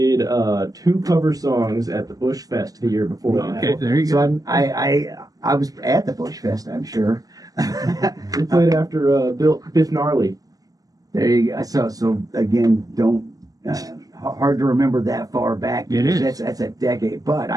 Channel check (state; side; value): late; left; 0.18 ms